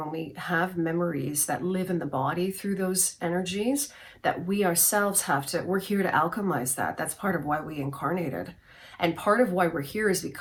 we have memories that live in the body through those energies, that we ourselves we're here to alchemize that. That's part of why we incarnated. And part of why we're here is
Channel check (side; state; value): both; identical; correlation 1.00